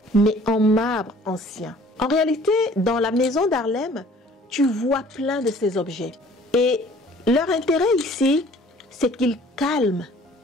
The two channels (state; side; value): normal; both; correlation 0.53